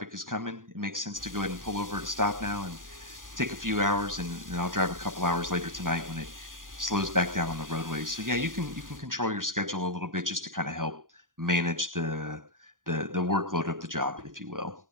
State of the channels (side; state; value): left; late; 0.90 ms